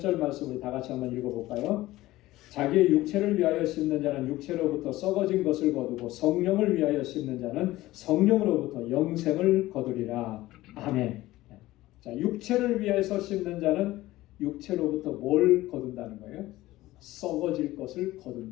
말씀을 다 같이 한번 읽어볼까요? 자기의 육체를 위하여 심는 자는 육체로부터 썩어진 것을 거두고 성령을 위하여 심는 자는 성령으로부터 영생을 거두리라. 아멘. 자, 육체를 위해서 심는 자는 육체로부터 뭘 거둔다는 거예요? 썩어질 것을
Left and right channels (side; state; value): right; quieter; 17.1 dB